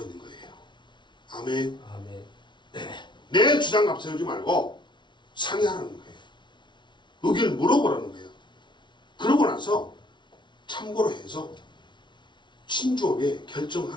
있는 거예요. 아멘. 아멘. 내 주장 앞세우지 말고 상의하라는 거예요. 의견을 물어보라는 거예요. 그러고 나서 참고로 해서 신중하게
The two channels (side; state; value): right; late; 0.23 ms